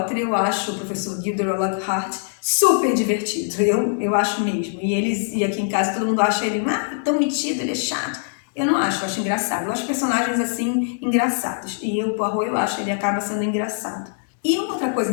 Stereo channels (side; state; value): right; silent; digital silence